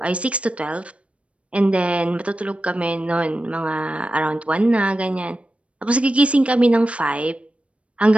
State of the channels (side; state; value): left; late; 0.062 ms